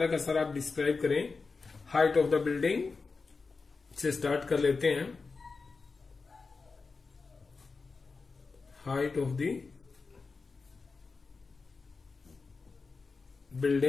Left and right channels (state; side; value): quieter; right; 4.4 dB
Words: का सारा आप डिस्क्राइब करें। हाइट ऑफ द बिल्डिंग से स्टार्ट कर लेते हैं। Height of the